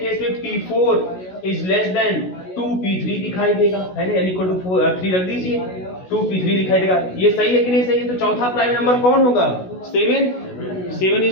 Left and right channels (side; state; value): right; late; 16 ms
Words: में p4 is less then 2p3 दिखाई देगा, है ना, n इक्वल टू 3 रख दीजिए, 2p3 दिखाई देगा। ये सही है कि नहीं सही है, तो चौथा प्राइम नंबर कौन होगा, 7